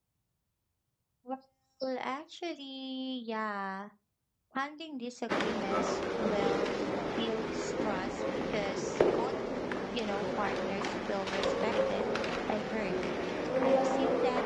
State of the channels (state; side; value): identical; both; correlation 1.00